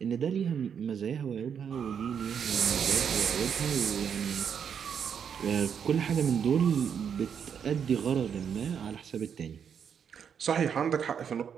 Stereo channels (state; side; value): quieter; left; 7.6 dB